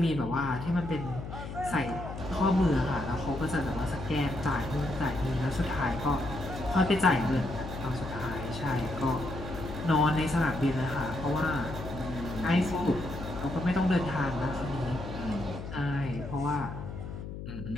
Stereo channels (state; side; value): noise; left; hum, 8 dB below the sound